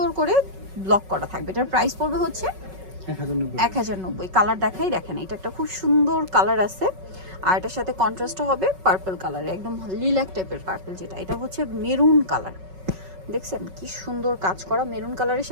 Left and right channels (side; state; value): left; late; 5.3 ms